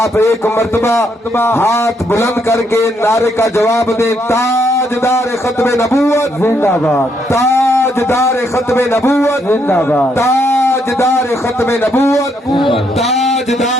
ایک مرتبہ ہاتھ بلند کر کے نعرے کا جواب دیں. تاجدار ختم نبوت زندہ باد, تاجدار ختم نبوت زندہ باد, تاجدار ختم نبوت,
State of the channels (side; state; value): both; normal; correlation 0.75